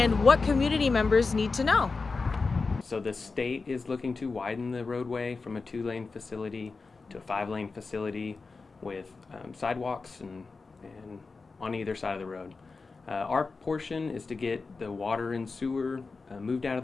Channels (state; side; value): quieter; right; 4.2 dB